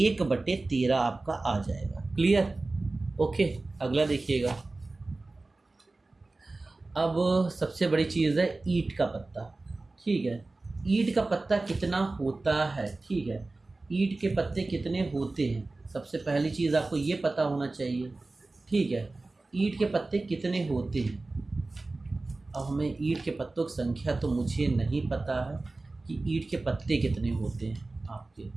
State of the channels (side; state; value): left; quieter; 3.3 dB